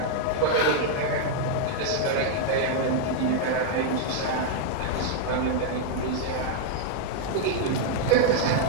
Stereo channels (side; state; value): both; different; correlation 0.00